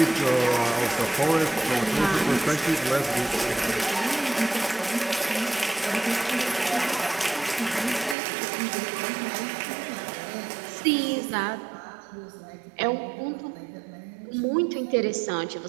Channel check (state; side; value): drops out; left; at 8.2 s